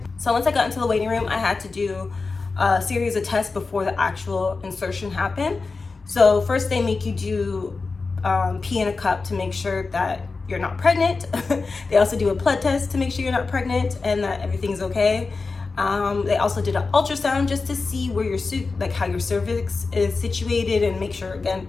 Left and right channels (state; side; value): quieter; right; 4.1 dB